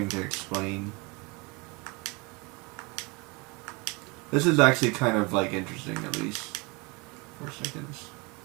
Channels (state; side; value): quieter; left; 27.8 dB